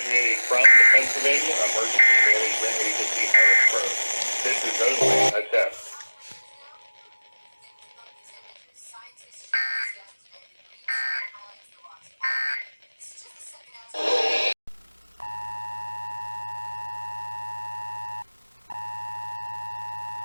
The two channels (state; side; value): inverted; both; correlation -1.00